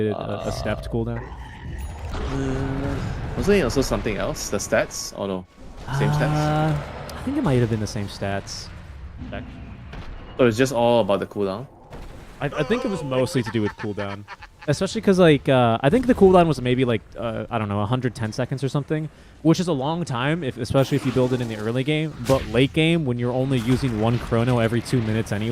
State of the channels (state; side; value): identical; both; correlation 1.00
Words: a stepped cooldown. Wasn't it also something else? The stats? Oh no. Same stats? I think it might have been the same stats. So it's just all about the cooldown? I think it was mostly to do with cooldown. Especially because, like, I think the cooldown was maybe, like, I don't know, 110 seconds or something, which is a long time, especially if you build it in the early game. But late game, when you're only using 1 chrono every 2 minutes